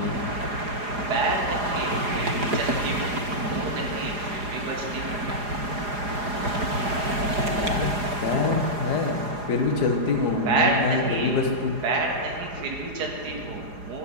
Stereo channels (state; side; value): late; left; 4.9 ms